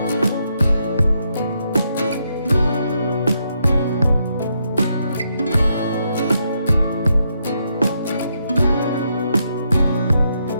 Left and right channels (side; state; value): both; inverted; correlation -0.79